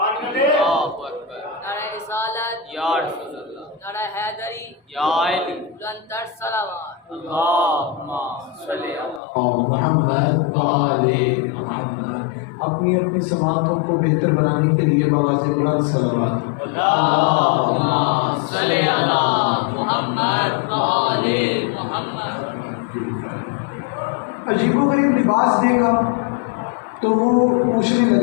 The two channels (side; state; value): right; drops out; at 9.2 s